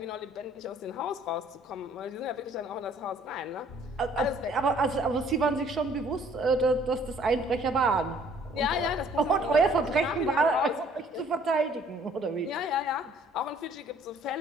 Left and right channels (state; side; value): normal; both; correlation 0.58